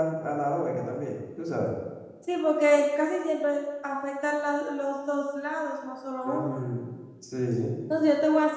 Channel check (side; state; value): both; identical; correlation 1.00